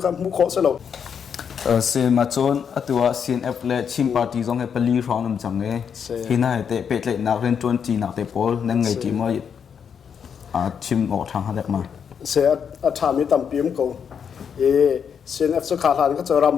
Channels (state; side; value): quieter; right; 7.3 dB